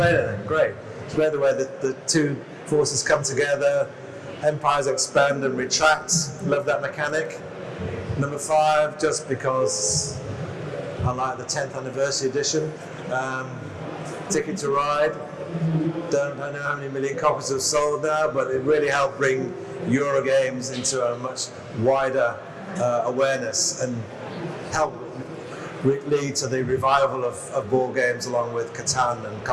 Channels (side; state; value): both; identical; correlation 1.00